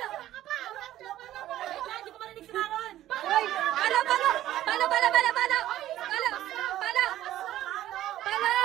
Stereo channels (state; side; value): quieter; left; 13.6 dB